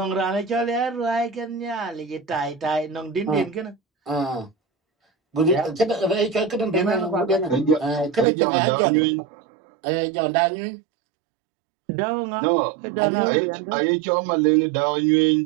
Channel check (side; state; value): left; drops out; at 8.2 s